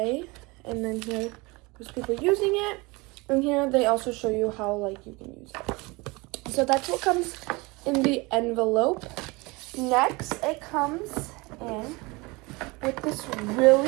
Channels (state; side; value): quieter; left; 24.9 dB